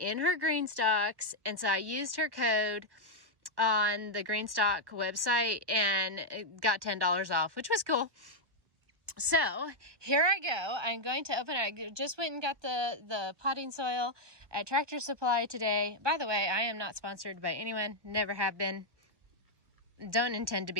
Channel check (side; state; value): left; late; 1.1 ms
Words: her green stalks. And so I used her code on the green stalk website and it got $10 off, which was cool. So here I go. I'm going to open it. I just went and got the potting soil at Tractor Supply today. By the way, I am not sponsored by anyone. Never have been. Don't intend to